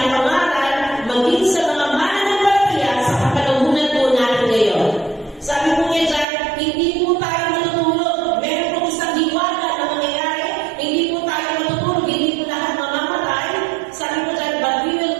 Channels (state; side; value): drops out; left; at 6.2 s